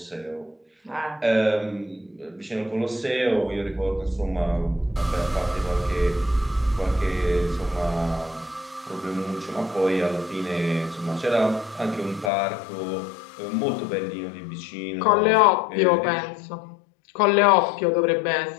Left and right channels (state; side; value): drops out; right; at 12.3 s